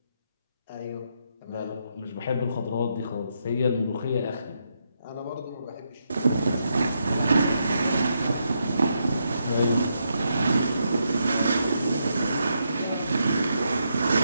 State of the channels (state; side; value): inverted; both; correlation -0.80